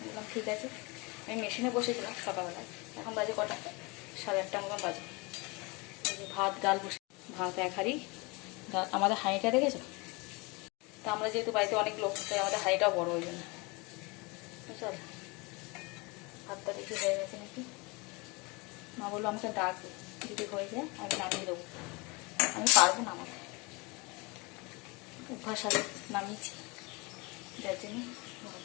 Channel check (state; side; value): quieter; right; 26.9 dB